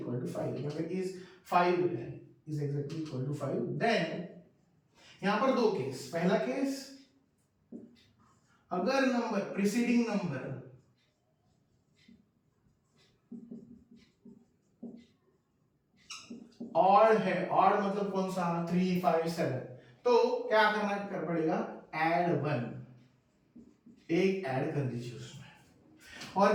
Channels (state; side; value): identical; both; correlation 1.00